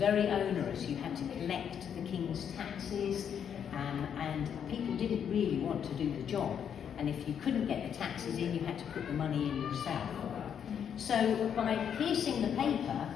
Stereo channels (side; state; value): right; quieter; 8.2 dB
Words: onerous. You had to collect the King's taxes, and people didn't really want to do the job. And if you couldn't get the taxes in, you had to put the money in yourself. So by piercing the paper,